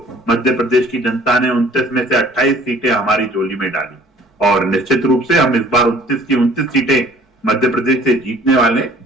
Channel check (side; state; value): both; normal; correlation 0.53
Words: मध्य प्रदेश की जनता ने 29 में से 28 सीटें हमारी झोली में डाली, और निश्चित रूप से हम इस बार 29 की 29 सीटें मध्य प्रदेश से जीतने वाले।